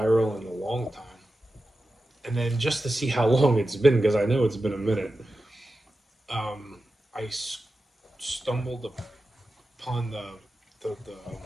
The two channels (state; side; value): normal; both; correlation 0.92